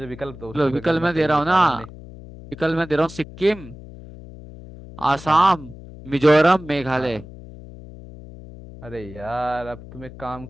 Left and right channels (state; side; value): noise; left; hum, 16 dB below the sound